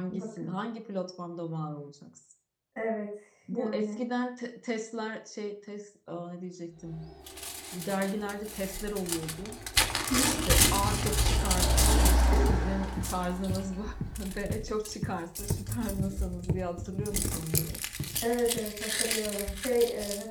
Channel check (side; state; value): both; identical; correlation 1.00